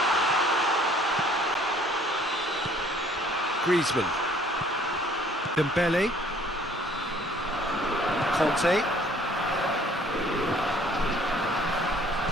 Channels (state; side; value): normal; both; correlation 0.57